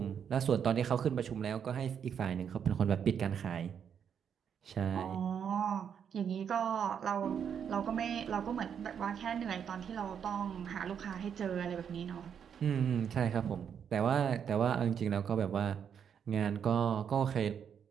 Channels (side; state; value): left; quieter; 7.8 dB